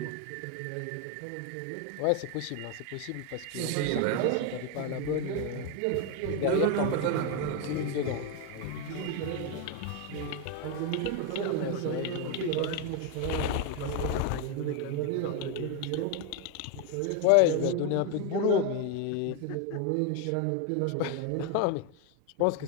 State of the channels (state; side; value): different; both; correlation 0.01